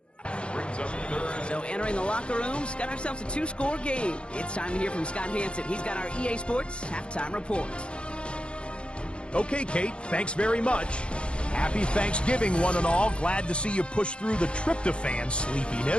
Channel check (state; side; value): late; right; 0.056 ms